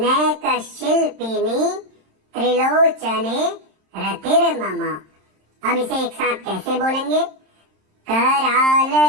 नैक शिल्पिनी त्रिलोचने रतिर्मम। अब इसे एक साथ कैसे बोलेंगे? कराल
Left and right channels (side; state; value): left; late; 27 ms